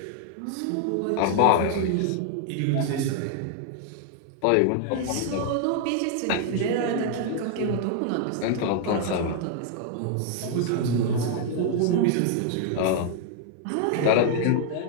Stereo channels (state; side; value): different; both; correlation 0.00